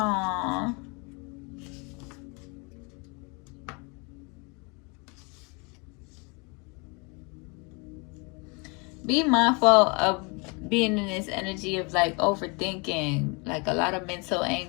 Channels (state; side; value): quieter; right; 31.3 dB